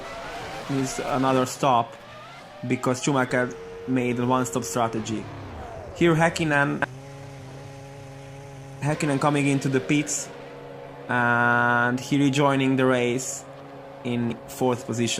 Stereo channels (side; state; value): both; identical; correlation 1.00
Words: needs another stop because Schumacher made a one-stop strategy. Here Häkkinen coming into the pits, and he rejoining the race in 4th